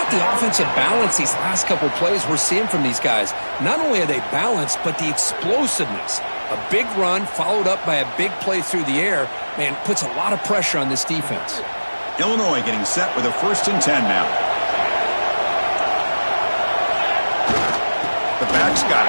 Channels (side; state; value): both; inverted; correlation -1.00